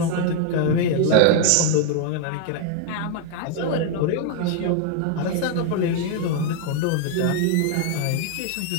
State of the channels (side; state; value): both; different; correlation 0.00